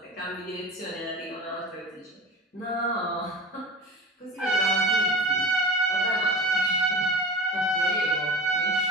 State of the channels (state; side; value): normal; both; correlation 0.33